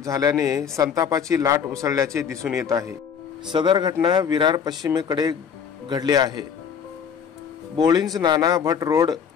झाल्याने संतापाची लाट उसळल्याचे दिसून येत आहे। सदर घटना विरार पश्चिमेकडे घडली आहे। बोळिंज नाना भट रोड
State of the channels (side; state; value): right; quieter; 7.2 dB